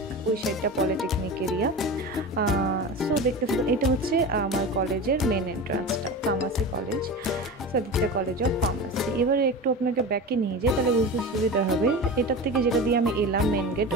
ওই সাইডটা পলিটেকনিক এরিয়া। সো দেখতে থাকুন, এটা হচ্ছে আমার কলেজের মেন এন্ট্রান্সটা, pharmacy college, Saditya college of pharmacy. এবারে একটু আপনাকে ব্যাকে নিয়ে যাই, তাহলে বুঝতে সুবিধা হবে। এটার থেকে যেটা দিয়ে আমি এলাম মেন গেট,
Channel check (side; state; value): both; normal; correlation 0.29